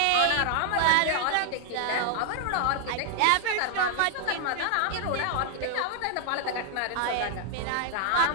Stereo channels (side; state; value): both; different; correlation 0.00